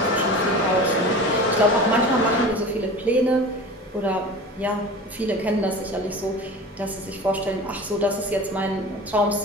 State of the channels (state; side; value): normal; both; correlation 0.35